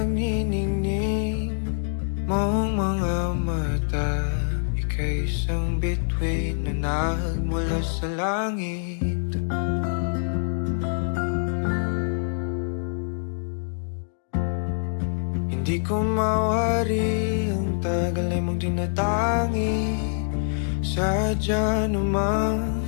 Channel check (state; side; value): silent; right; digital silence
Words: mong mga mata. Ika'y isang bituin na nagmula sa langit. Hindi ko mawari ang tagal ay mong tinatangi. Sadya namang